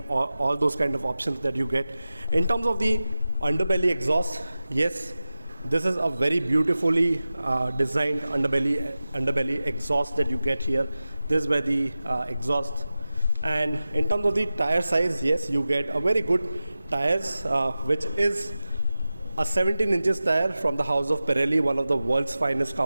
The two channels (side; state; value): both; inverted; correlation -0.95